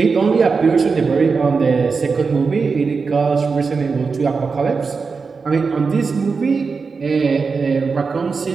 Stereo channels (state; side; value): quieter; left; 4.9 dB